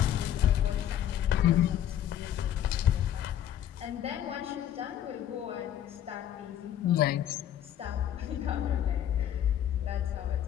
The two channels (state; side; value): quieter; right; 10.7 dB